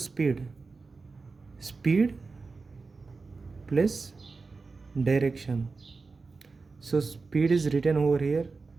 plus direction. So speed is written over here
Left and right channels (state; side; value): quieter; left; 4.2 dB